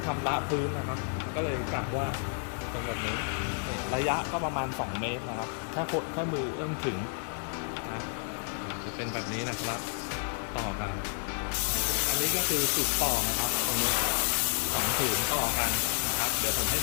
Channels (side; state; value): right; silent; 57 dB below the other